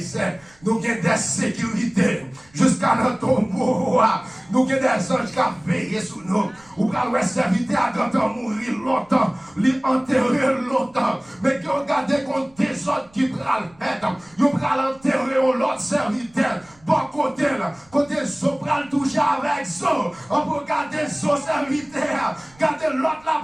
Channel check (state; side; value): noise; right; rumble, 29 dB below the sound